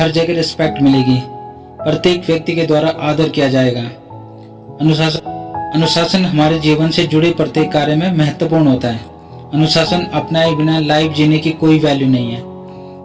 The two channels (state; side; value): identical; both; correlation 1.00